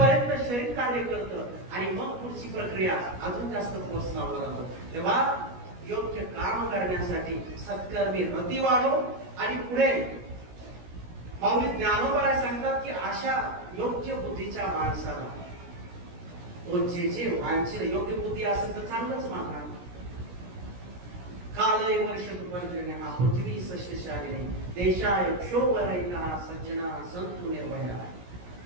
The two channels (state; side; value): late; left; 17 ms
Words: शरीर कार्य करतं आणि मग पुढची प्रक्रिया अजून जास्त फोर्स लावला जातो. तेव्हा योग्य काम करण्यासाठी सत्कर्मी रती वाढो. आणि पुढे माऊली ज्ञानोबा सांगतात की अशा योग्य बुद्धीच्या माणसाला तो जे वांछित योग्य बुद्धी असेल तर चांगलंच मानणार. कालय वर्ष तुपंजने हा पृथ्वी सस्यशालिनी देशाय क्षोभरहिता सज्जना संतु निर्भया.